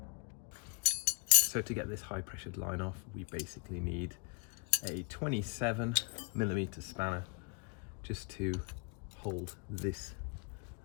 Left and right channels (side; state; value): right; quieter; 34.5 dB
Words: So to get this high pressured line off, we basically need a 27mm spanner just to hold this